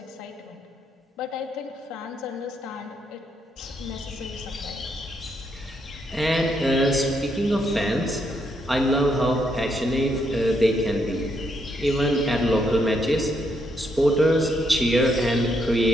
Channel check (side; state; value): both; normal; correlation 0.76